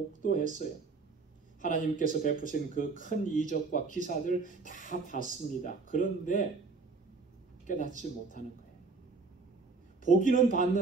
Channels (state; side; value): quieter; left; 4.2 dB